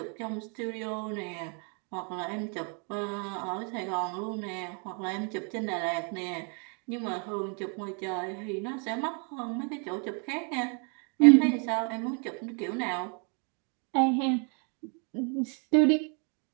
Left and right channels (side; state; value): left; quieter; 38.1 dB